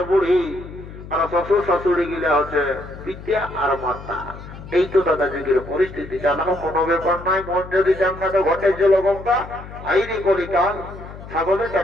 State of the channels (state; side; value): noise; left; hum, 14 dB below the sound